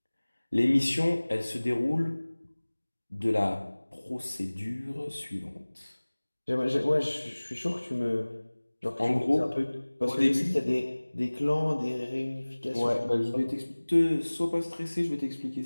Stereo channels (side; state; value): both; inverted; correlation -1.00